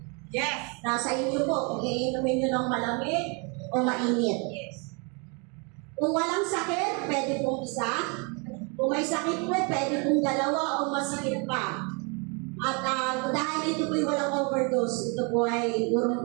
Yes. Nasa inyo po kung iinumin nyo ng malamig o mainit. Yes. Kung walang sakit, pwede pong isa. Kung may sakit po, pwede pong dalawa o masikip pa. At dahil ito po walang overdose, ito po ay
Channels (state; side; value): quieter; left; 33.4 dB